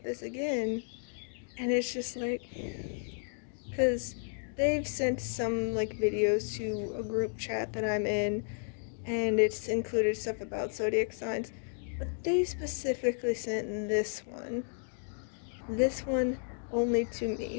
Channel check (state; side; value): silent; right; 56 dB below the other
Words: this again. And it's just like, because they've sent some, like, videos to a group chat that I'm in, and it's included stuff about zodiac signs, but they specifically sent this one only to